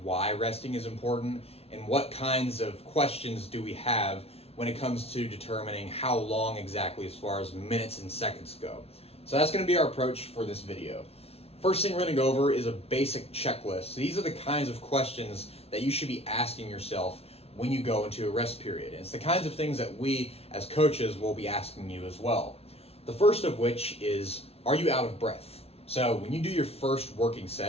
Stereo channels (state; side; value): late; right; 0.30 ms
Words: why resting is important and what kinds of questions do we have when it comes to determining how long exactly as far as minutes and seconds go. So that's going to be our approach for this video. First thing we're going to go over is a basic checklist. So these are the kinds of questions that you should be asking yourself when you go into a rest period. And it's the kinds of things that we as coaches will be asking you as well. The first of which is, are you out of breath? So when you do your first working